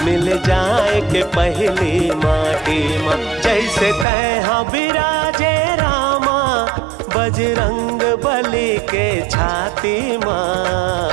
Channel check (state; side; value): drops out; left; at 4.0 s